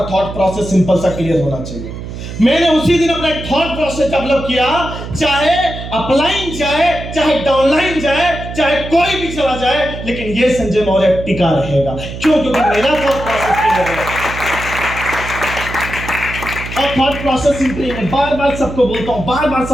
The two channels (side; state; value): right; noise; hum, 9 dB below the sound